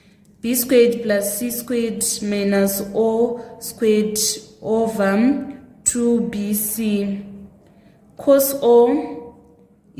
B squared plus C squared minus O squared over 2BC. Cos O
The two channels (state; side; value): identical; both; correlation 1.00